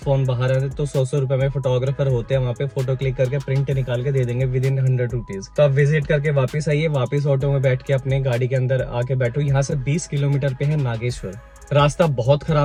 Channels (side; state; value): both; identical; correlation 1.00